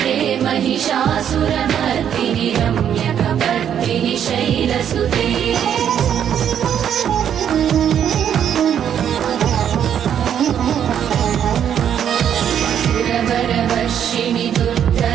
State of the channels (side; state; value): left; quieter; 9.2 dB